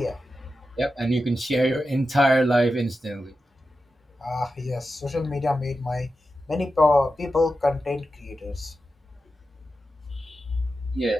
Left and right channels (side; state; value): both; normal; correlation 0.91